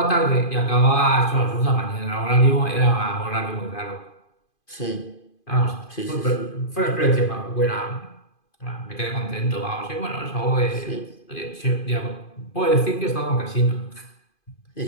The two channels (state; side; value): late; right; 2.5 ms